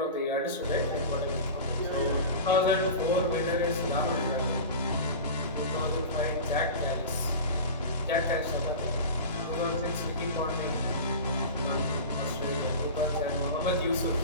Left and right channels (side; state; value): both; inverted; correlation -0.31